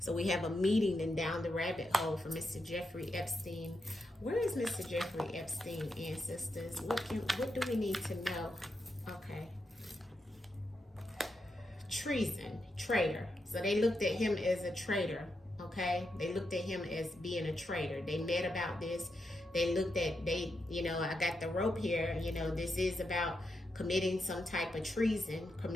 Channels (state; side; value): normal; both; correlation 0.85